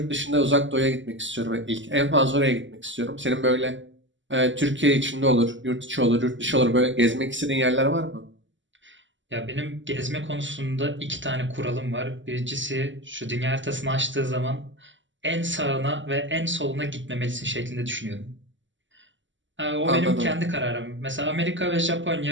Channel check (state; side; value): late; left; 0.55 ms